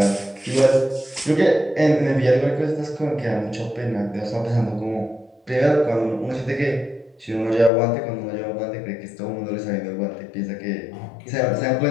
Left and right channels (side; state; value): right; drops out; at 7.7 s